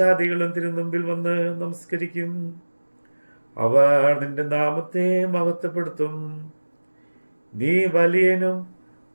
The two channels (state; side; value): inverted; both; correlation -1.00